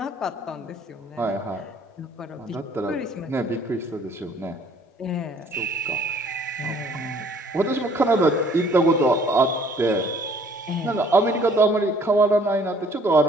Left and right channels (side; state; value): both; normal; correlation 0.58